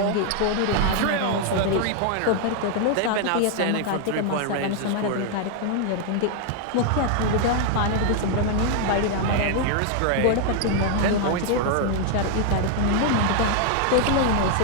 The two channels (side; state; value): both; different; correlation 0.00